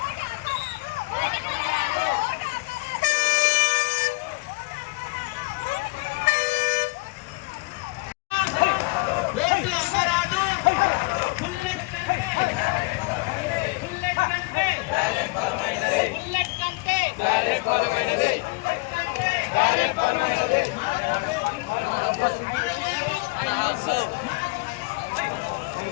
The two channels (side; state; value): right; quieter; 26.6 dB